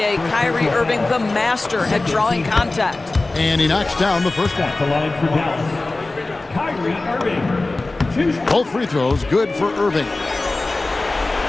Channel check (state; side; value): quieter; right; 3.1 dB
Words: Kyrie Irving, the master at drawing contact. And he knocks down the first one. At the line for Dallas, Kyrie Irving. 2 shots. Both free throws good for Irving.